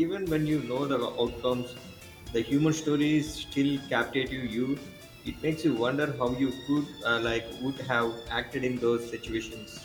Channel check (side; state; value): both; identical; correlation 1.00